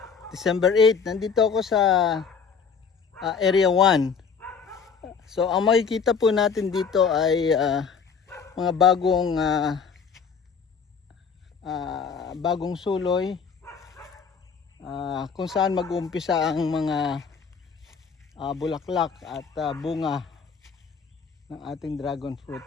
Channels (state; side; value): quieter; right; 6.0 dB